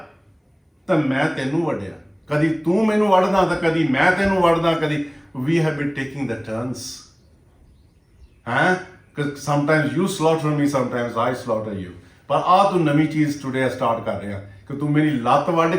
ਤਾਂ ਮੈਂ ਤੈਨੂੰ ਵੱਢਿਆ, ਕਦੀ ਤੂੰ ਮੈਨੂੰ ਵੱਢਦਾ ਤਾਂ ਕਦੀ ਮੈਂ ਤੈਨੂੰ ਵੱਢਦਾ, ਕਦੀ we have been taking the turns, sometimes you slaughter me, sometimes I slaughter you। ਪਰ ਆ ਤੂੰ ਨਵੀਂ ਚੀਜ਼ ਟੁਡੇ ਸਟਾਰਟ ਕਰ ਰਿਹਾ ਕਿ ਤੂੰ ਮੇਰੀ ਲੱਤ ਵੱਢ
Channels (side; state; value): both; identical; correlation 1.00